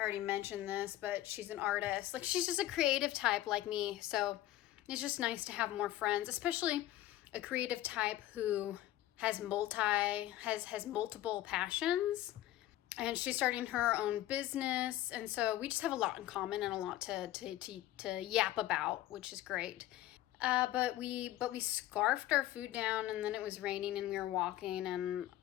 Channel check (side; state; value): right; quieter; 14.6 dB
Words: already mentioned this, but she's an artist. Like, she's just a creative type like me. So it's just nice to have more friends, especially a creative type who has multiple passions. And she's starting her own business. And so we just have a lot in common and a lot to yap about, which is great. But we scarfed our food down, and then it was raining and we were walking, and